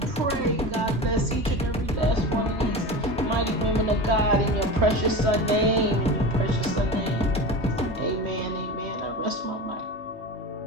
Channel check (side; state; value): both; normal; correlation 0.28